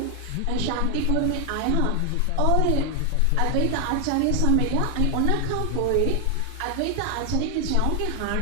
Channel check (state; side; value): different; both; correlation 0.00